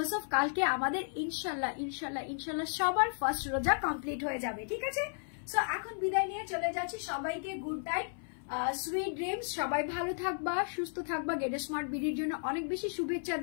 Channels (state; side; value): silent; right; 55 dB below the other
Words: অফ কালকে আমাদের ইনশাল্লাহ ইনশাল্লাহ ইনশাল্লাহ সবার ফার্স্ট রোজা কমপ্লিট হয়ে যাবে, ঠিক আছে? সো এখন বিদায় নিয়ে চলে যাচ্ছি, সবাইকে গুড নাইট, সুইট ড্রিমস, সবাই ভালো থাকবা, সুস্থ থাকবা, গেট স্মার্ট বিডির জন্য অনেক বেশি শুভেচ্ছা